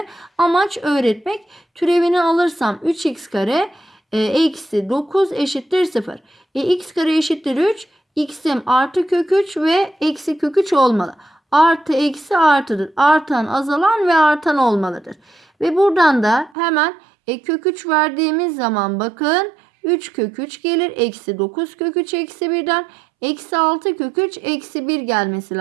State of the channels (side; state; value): left; drops out; at 16.5 s